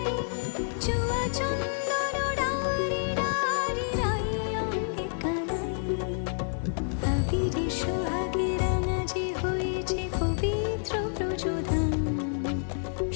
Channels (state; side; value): silent; right; digital silence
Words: চুয়া চন্দন ডারি ডারি রাই অঙ্গে কানাই। আবিরে সোহাগে রাঙা যে হয়েছে পবিত্র প্রযোধান,